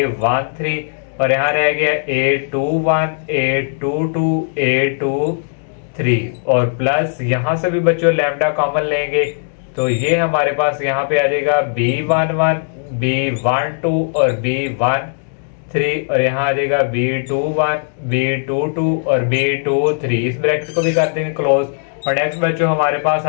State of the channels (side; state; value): right; silent; digital silence